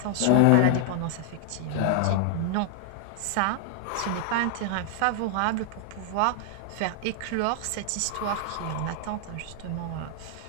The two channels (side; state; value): both; different; correlation 0.00